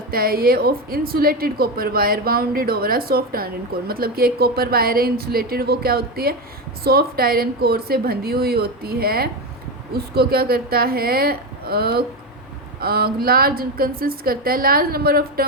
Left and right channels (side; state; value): both; normal; correlation 0.15